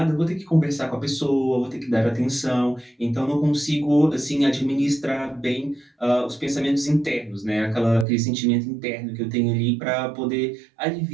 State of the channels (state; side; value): drops out; left; at 8.1 s